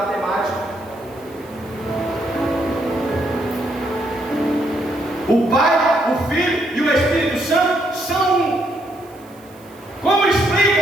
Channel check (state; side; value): noise; right; hiss, 27 dB below the sound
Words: O Pai, o Filho e o Espírito Santo são um. Como